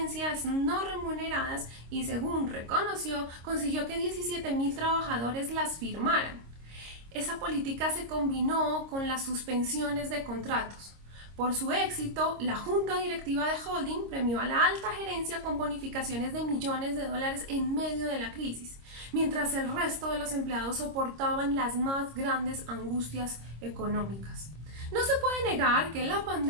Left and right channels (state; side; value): late; left; 26 ms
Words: no remuneradas y, según reconoció, consiguió que 17,000 trabajadores las firmaran. Esa política se combinó con las suspensiones de contratos. Por su éxito, la Junta Directiva de Holding premió a la alta gerencia con bonificaciones de millones de dólares en medio de la crisis, mientras el resto de los empleados soportaban las más grandes angustias económicas. No se puede negar que la